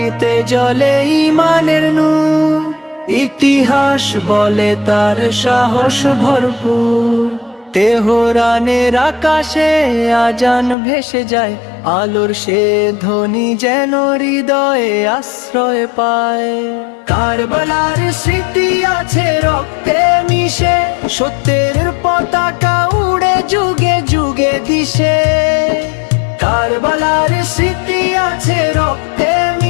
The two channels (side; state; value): right; drops out; at 10.8 s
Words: জ্বলে ঈমানের নূর, ইতিহাস বলে তার সাহস ভরপুর। তেহরানের আকাশে আজান ভেসে যায়, আলোর সে ধ্বনি যেন হৃদয়ে আশ্রয় পায়। কারবালার স্মৃতি আছে রক্তে মিশে, সত্যের পতাকা উড়ে যুগে যুগে দিশে। কারবালার স্মৃতি আছে রক্তে